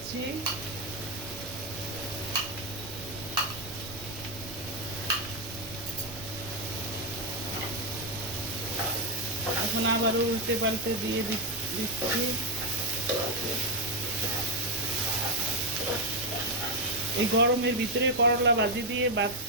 এখন আবারও উল্টে পাল্টে দিয়ে দিচ্ছি। এই গরমের ভিতরে করলা ভাজি দিয়ে ভাত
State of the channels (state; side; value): noise; right; rumble, 14 dB below the sound